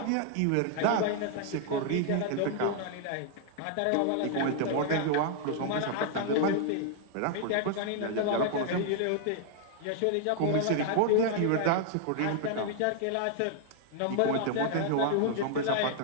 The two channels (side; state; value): both; different; correlation 0.00